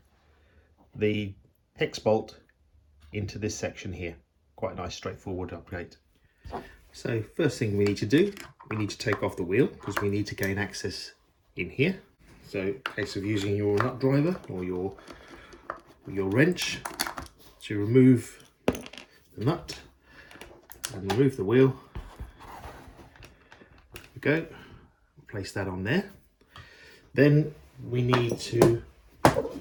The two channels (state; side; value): identical; both; correlation 1.00